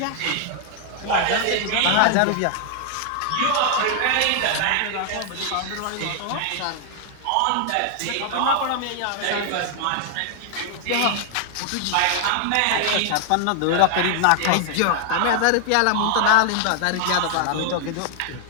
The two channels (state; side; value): different; both; correlation 0.00